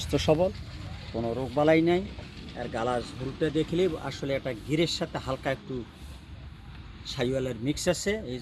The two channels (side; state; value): both; identical; correlation 1.00